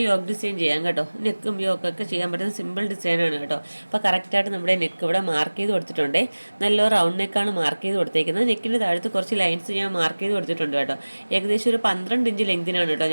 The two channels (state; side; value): inverted; both; correlation -1.00